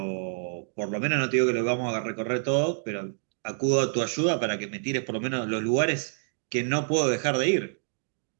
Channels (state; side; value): silent; left; digital silence